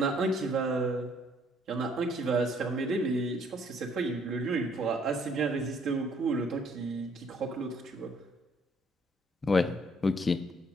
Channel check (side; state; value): both; normal; correlation 0.64